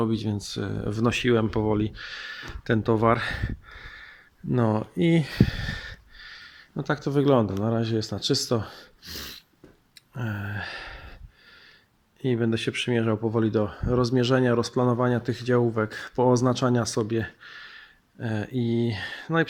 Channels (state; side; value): identical; both; correlation 1.00